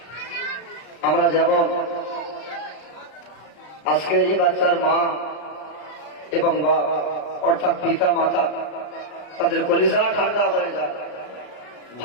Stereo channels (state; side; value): late; right; 34 ms